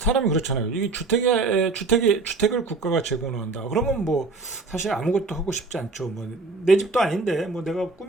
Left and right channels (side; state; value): left; quieter; 3.8 dB